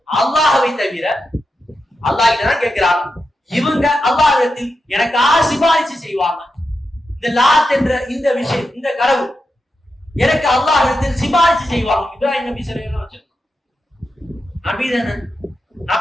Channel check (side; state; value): both; normal; correlation 0.88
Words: அல்லாஹ்வை தவிர அல்லாஹ் கிட்ட தான் கேட்கிறாங்க. இவங்க அல்லாஹ்விடத்தில் எனக்காக சிபாரிசு செய்வாங்க. இந்த லாத் என்ற இந்த விஷயம், இந்த கடவுள் எனக்கு அல்லாஹ்விடத்தில் சிபாரிசு செய்வாங்க. இப்ராஹிம் நபி ஸல்லல்லாஹு அலைஹி வஸல்லம் நபி தானே,